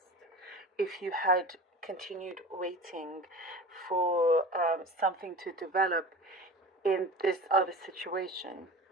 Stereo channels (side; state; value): both; normal; correlation 0.35